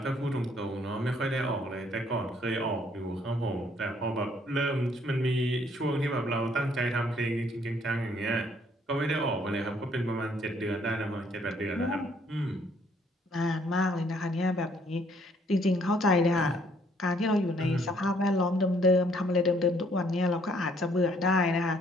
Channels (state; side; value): normal; both; correlation 0.65